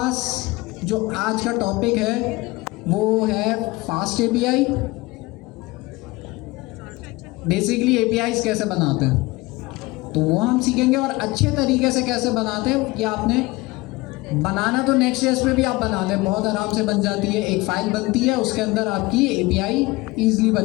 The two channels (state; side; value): quieter; right; 21.6 dB